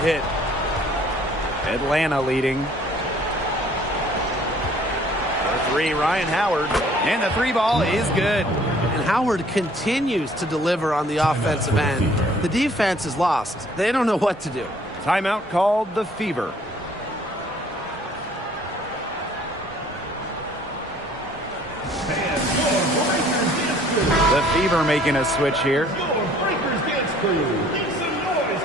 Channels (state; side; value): normal; both; correlation 0.57